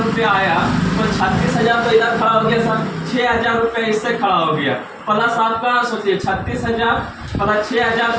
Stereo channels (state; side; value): identical; both; correlation 1.00